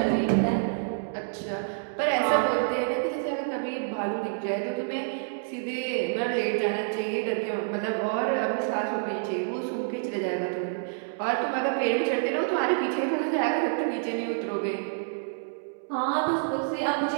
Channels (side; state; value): left; silent; digital silence